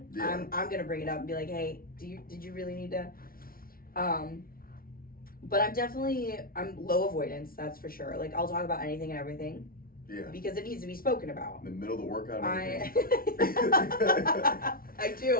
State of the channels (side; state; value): right; late; 0.43 ms